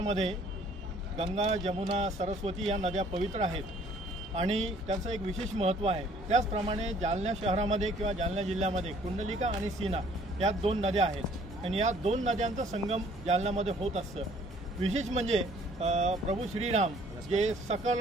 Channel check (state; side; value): normal; both; correlation 0.58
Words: गंगा, जमुना, सरस्वती या नद्या पवित्र आहेत आणि त्याचं एक विशेष महत्त्व आहे। त्याचप्रमाणे जालना शहरामध्ये किंवा जालना जिल्ह्यामध्ये कुंडलिका आणि सीना या दोन नद्या आहेत आणि या दोन नद्यांचा संगम जालन्यामध्ये होत असतं। विशेष म्हणजे प्रभू श्रीराम जे सकल